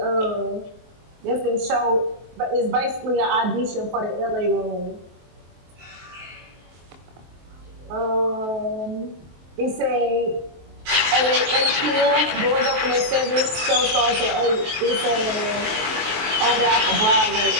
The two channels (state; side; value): late; left; 23 ms